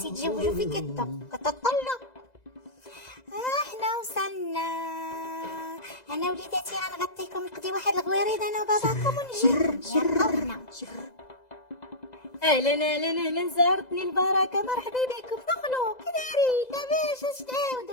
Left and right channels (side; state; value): right; late; 2.0 ms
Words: يتزوجوا في كتطلوا. حنا وصلنا انا وليداتي غنغطيكم نقضي واحد الغويريد انا وباباكم ونجي يلا. اهلا اهلا اهلا زارتني البركه مرحبا بكم دخلوا كي دايرين لاباس اش